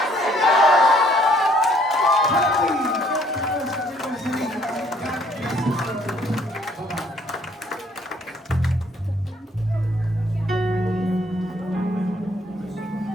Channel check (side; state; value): both; normal; correlation 0.63